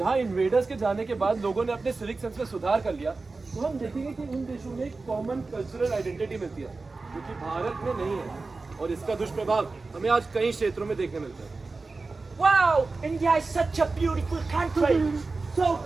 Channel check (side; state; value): left; quieter; 3.8 dB